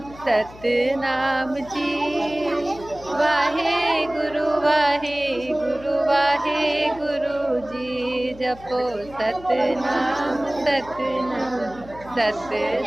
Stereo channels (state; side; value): noise; left; hum, 19 dB below the sound